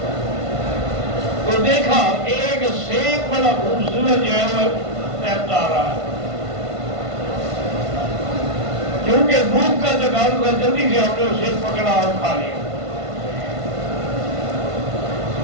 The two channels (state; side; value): late; left; 1.5 ms